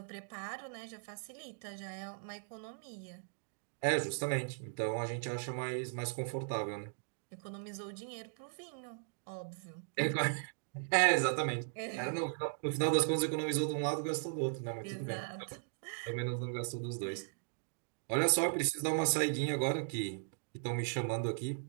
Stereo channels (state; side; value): silent; left; digital silence